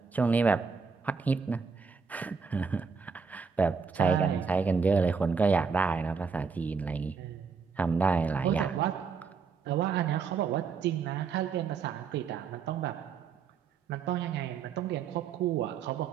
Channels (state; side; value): quieter; left; 5.5 dB